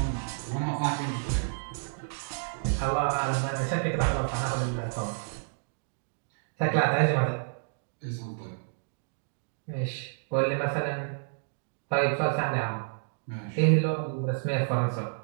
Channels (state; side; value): silent; left; digital silence